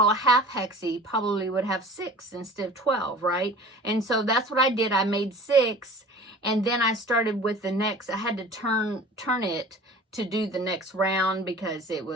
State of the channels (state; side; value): normal; both; correlation 0.43